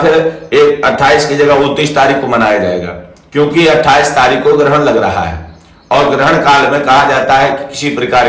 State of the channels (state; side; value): identical; both; correlation 1.00